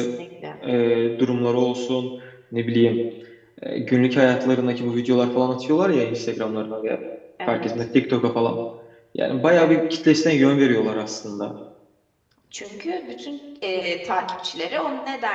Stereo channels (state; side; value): identical; both; correlation 1.00